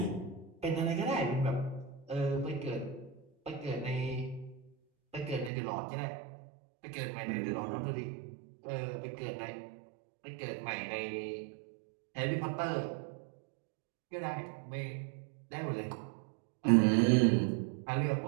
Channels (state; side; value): drops out; left; at 5.5 s